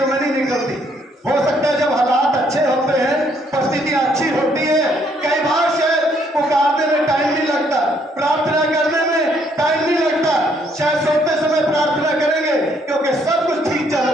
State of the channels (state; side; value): normal; both; correlation 0.68